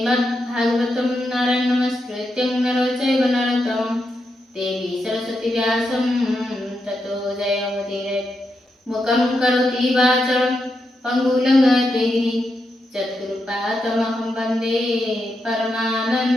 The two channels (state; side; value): normal; both; correlation 0.85